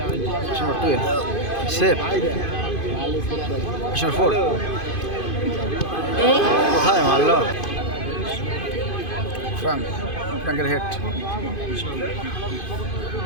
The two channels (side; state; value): right; late; 2.5 ms